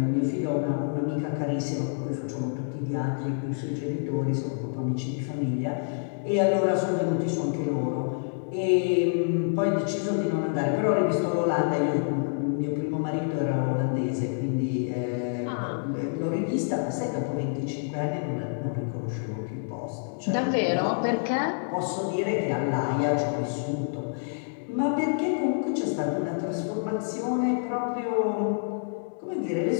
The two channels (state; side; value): silent; right; digital silence